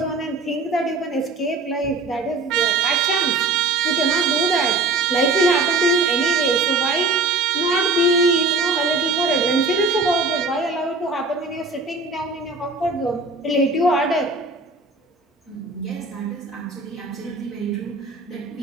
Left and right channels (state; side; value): quieter; left; 3.4 dB